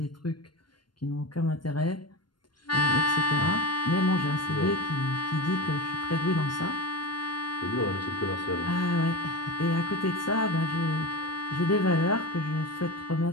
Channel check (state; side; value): late; right; 0.72 ms